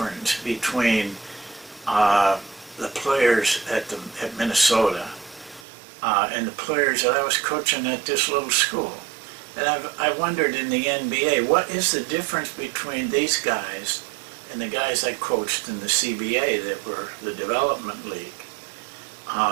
between the players at Minnesota and the players that I was coaching at this little school? And I wondered in the NBA, what is the difference between these guys and the guys I coached in the CBA that were the development league?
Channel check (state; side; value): drops out; left; at 5.7 s